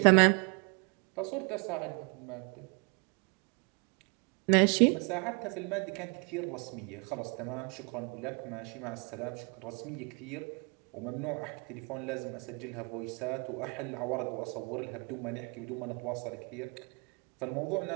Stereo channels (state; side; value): quieter; left; 33.7 dB